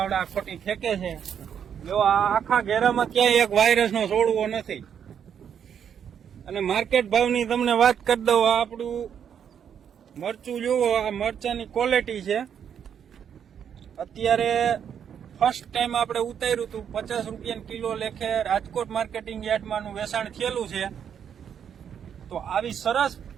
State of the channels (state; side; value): quieter; left; 8.3 dB